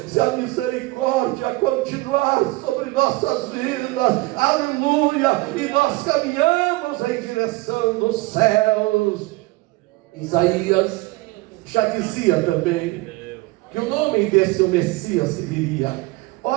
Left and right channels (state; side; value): quieter; left; 22.0 dB